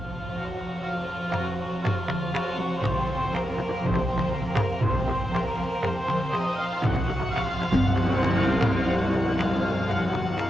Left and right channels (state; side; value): normal; both; correlation 0.87